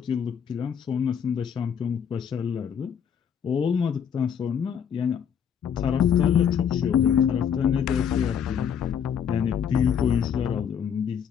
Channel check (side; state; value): right; quieter; 7.9 dB